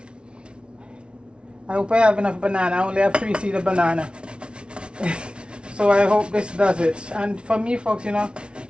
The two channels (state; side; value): late; left; 0.057 ms